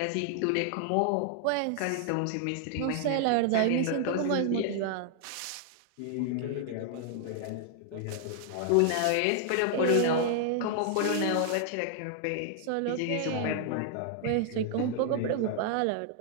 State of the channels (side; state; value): both; different; correlation 0.00